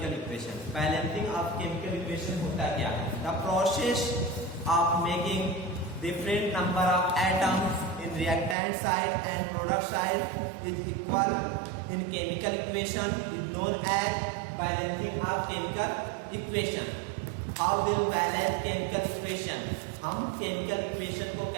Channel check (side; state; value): left; drops out; at 8.6 s